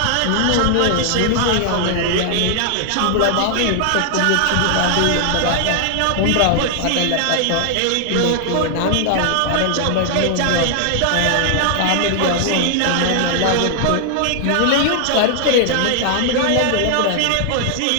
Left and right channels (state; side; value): different; both; correlation 0.00